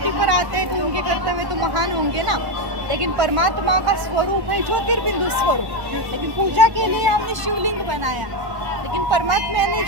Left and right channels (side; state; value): left; late; 1.1 ms